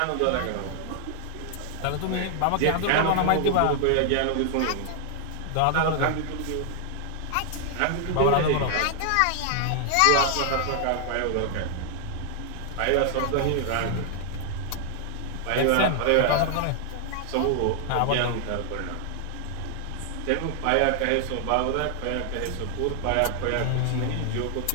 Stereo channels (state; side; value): different; both; correlation 0.00